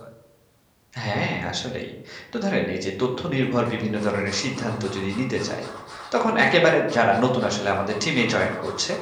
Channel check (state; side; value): identical; both; correlation 1.00